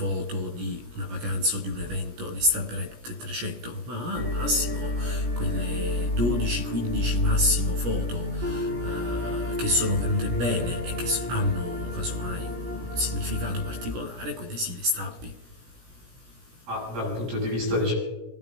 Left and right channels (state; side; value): late; left; 17 ms